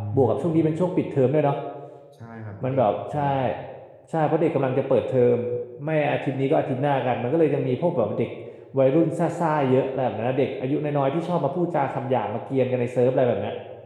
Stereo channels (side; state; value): both; identical; correlation 1.00